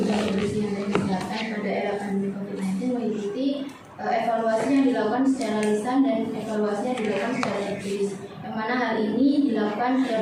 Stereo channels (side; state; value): both; identical; correlation 1.00